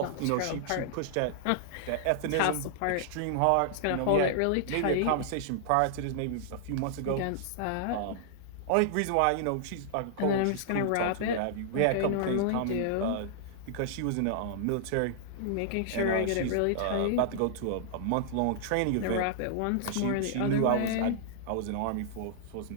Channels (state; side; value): different; both; correlation -0.01